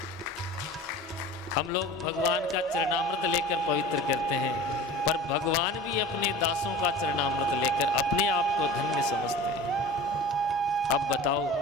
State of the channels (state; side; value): normal; both; correlation 0.37